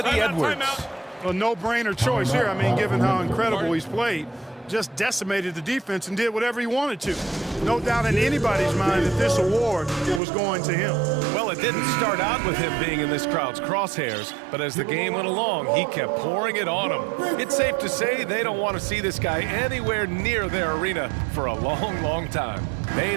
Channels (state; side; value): drops out; left; at 10.2 s